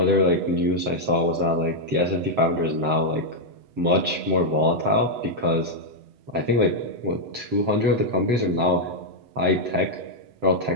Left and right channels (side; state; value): left; late; 7.8 ms